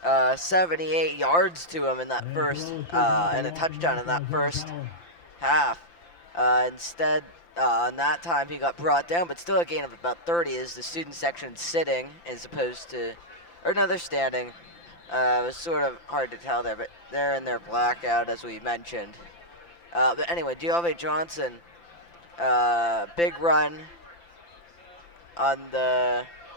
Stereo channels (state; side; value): late; right; 5.9 ms